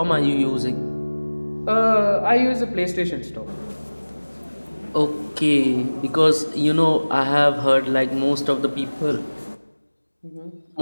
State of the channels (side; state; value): both; inverted; correlation -1.00